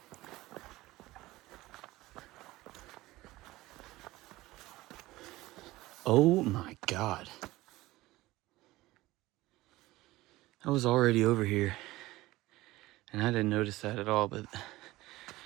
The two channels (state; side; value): quieter; left; 18.4 dB